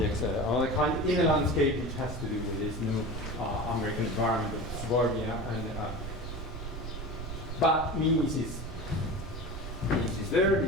all the kind in a landscape which has to do with this new American environment of suburbia. But Mies is there,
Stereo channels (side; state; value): right; noise; rumble, 8 dB below the sound